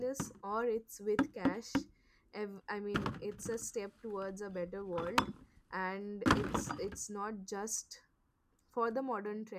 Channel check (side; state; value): both; identical; correlation 1.00